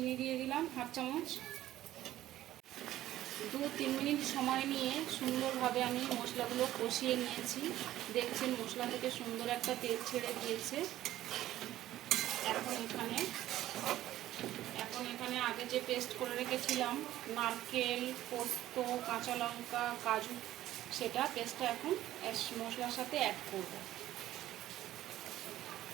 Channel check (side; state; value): left; quieter; 13.9 dB